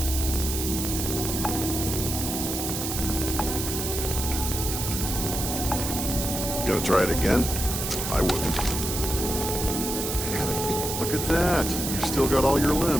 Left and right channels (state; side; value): noise; right; hiss, 3 dB below the sound